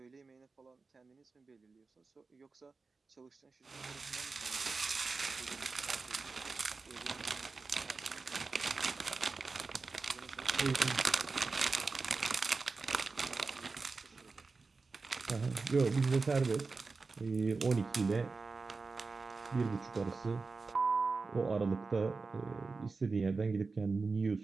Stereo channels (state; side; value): quieter; left; 4.1 dB